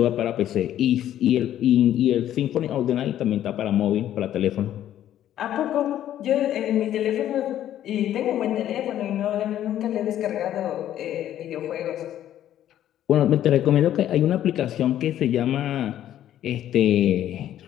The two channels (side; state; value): right; quieter; 11.7 dB